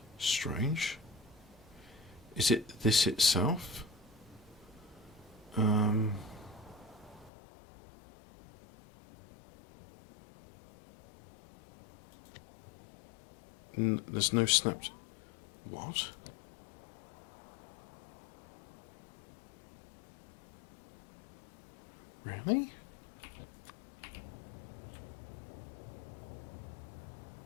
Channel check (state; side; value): drops out; right; at 7.3 s